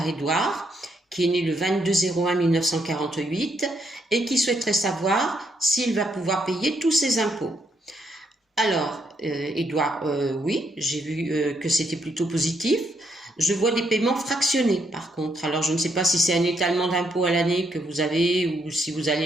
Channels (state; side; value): normal; both; correlation 0.76